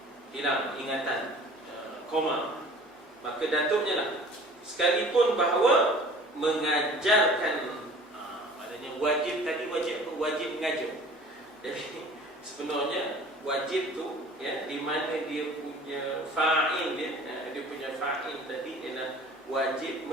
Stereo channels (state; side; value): normal; both; correlation 0.46